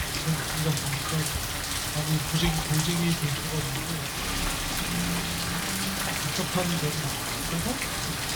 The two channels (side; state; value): both; identical; correlation 1.00